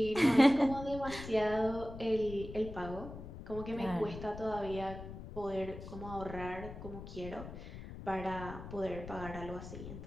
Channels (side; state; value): left; noise; rumble, 11 dB below the sound